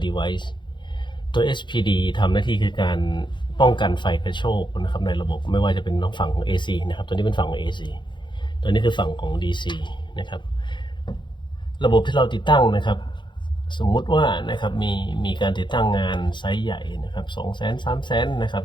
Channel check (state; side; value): late; right; 0.23 ms